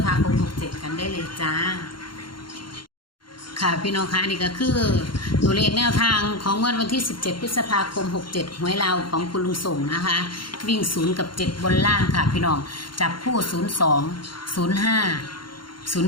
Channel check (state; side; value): late; right; 0.72 ms